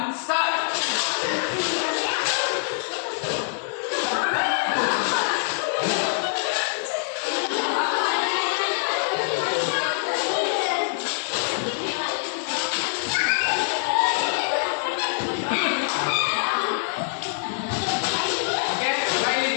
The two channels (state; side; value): silent; right; 62 dB below the other